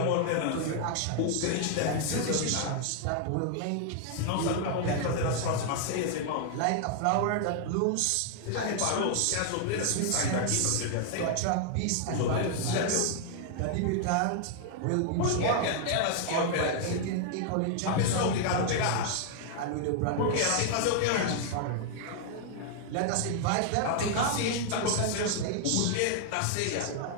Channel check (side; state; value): both; different; correlation 0.00